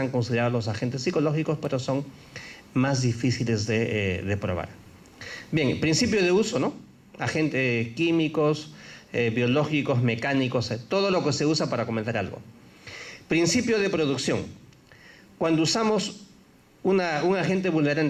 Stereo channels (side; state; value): both; identical; correlation 1.00